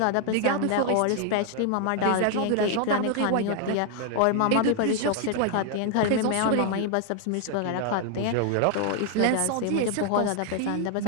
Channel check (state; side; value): different; both; correlation 0.00